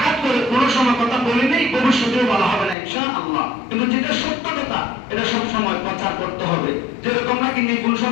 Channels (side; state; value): right; drops out; at 2.8 s